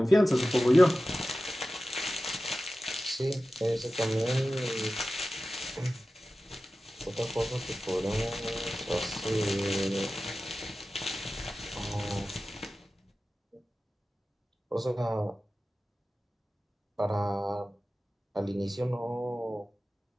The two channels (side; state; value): both; normal; correlation 0.95